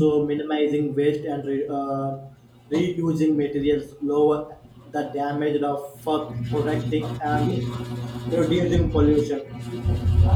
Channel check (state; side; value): identical; both; correlation 1.00